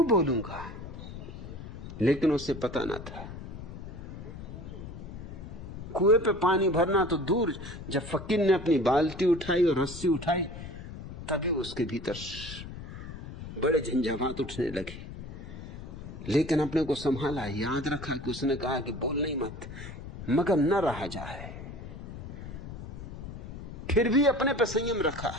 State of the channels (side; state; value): left; noise; rumble, 10 dB below the sound